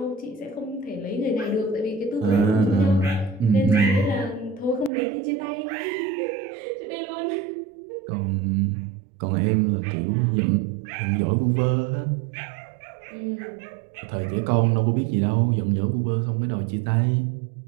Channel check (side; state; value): left; drops out; at 4.9 s